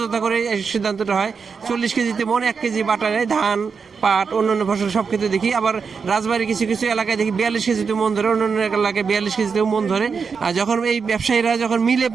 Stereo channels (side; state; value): left; quieter; 5.6 dB